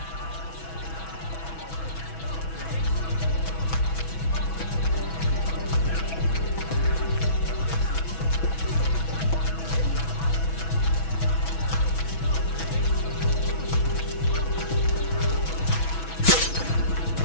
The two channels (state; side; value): late; right; 6.1 ms